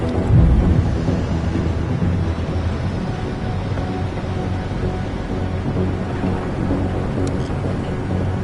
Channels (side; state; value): both; identical; correlation 1.00